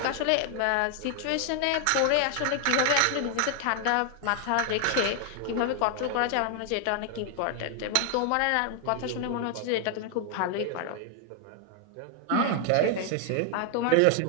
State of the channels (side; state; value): both; different; correlation 0.00